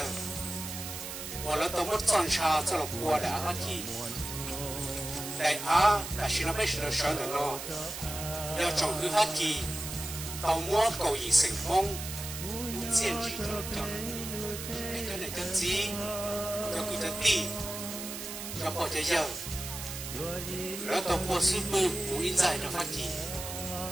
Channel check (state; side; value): noise; right; hiss, 8 dB below the sound